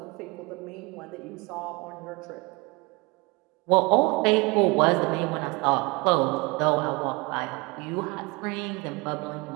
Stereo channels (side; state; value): left; quieter; 26.5 dB